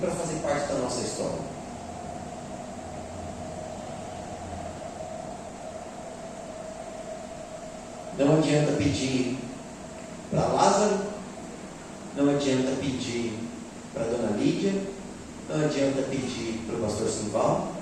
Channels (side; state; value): both; identical; correlation 1.00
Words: fazer parte da nossa história. Não adianta pedir para Lázaro, não adianta pedir para a dona Lídia, não adianta pedir para o pastor Simval,